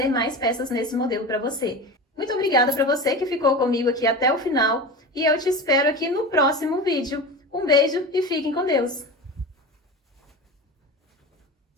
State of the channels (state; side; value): normal; both; correlation 0.29